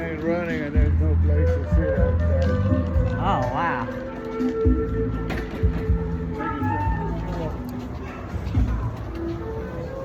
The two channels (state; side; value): identical; both; correlation 1.00